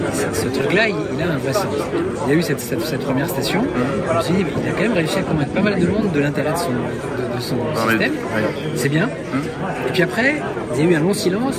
ce truc-là, il a un vrai sens. Il y a eu cette première station, je me suis dit, il a quand même réussi à convaincre pas mal de monde de l'intérêt de son système. C'est bien. Et puis après, il y a eu un long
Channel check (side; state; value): both; identical; correlation 1.00